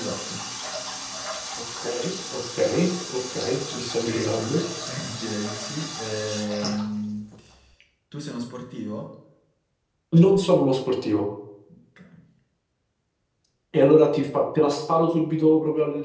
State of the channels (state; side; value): identical; both; correlation 1.00